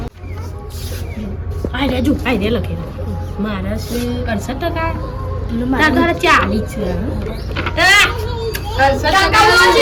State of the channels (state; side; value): identical; both; correlation 1.00